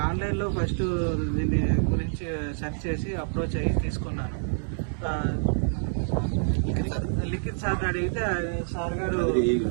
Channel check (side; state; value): left; silent; 60 dB below the other